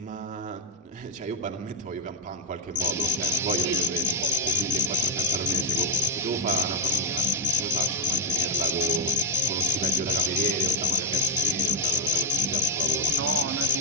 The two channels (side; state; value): both; normal; correlation 0.03